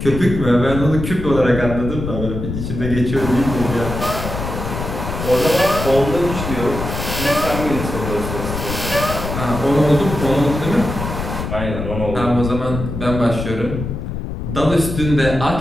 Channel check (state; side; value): noise; left; rumble, 5 dB below the sound